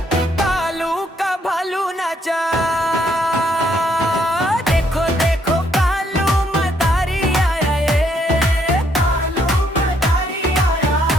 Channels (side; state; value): both; normal; correlation 0.71